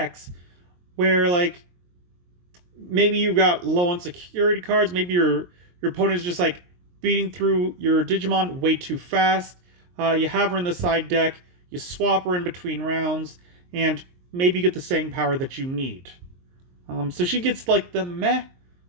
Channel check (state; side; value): late; left; 23 ms